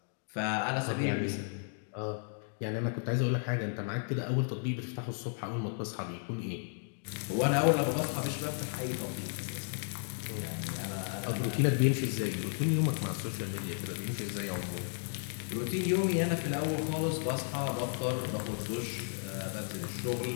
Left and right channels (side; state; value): right; silent; 55 dB below the other